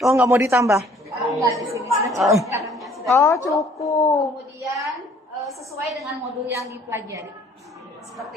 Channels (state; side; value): normal; both; correlation 0.57